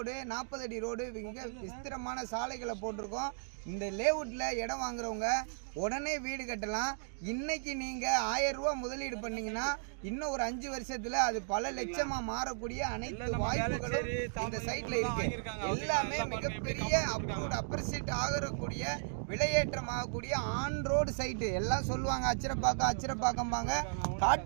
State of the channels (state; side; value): silent; left; digital silence